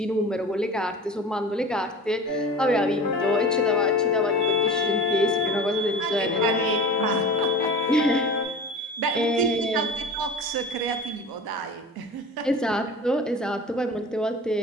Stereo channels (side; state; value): both; normal; correlation 0.36